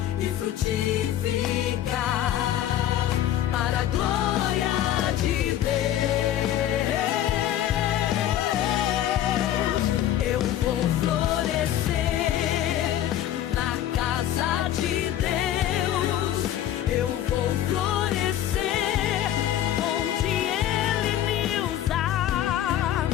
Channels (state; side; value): quieter; right; 11.9 dB